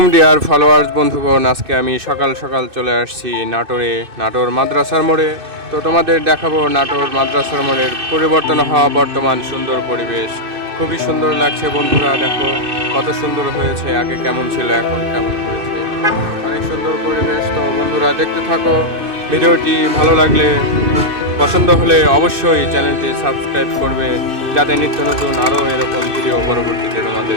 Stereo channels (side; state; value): left; late; 2.6 ms